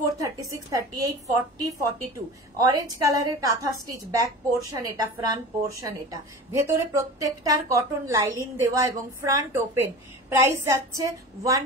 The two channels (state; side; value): normal; both; correlation 0.34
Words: 36, 38, 40, 42 অরেঞ্জ কালারের কাঁথা স্টিচ, ব্যাক পোর্শন এটা, ফ্রন্ট পোর্শন এটা, ভেতরে প্রত্যেকটার কটন লাইলিন দেওয়া এবং ফ্রন্ট ওপেন। প্রাইস যাচ্ছে